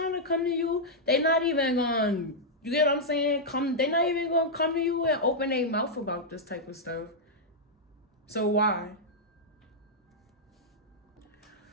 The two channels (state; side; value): normal; both; correlation -0.06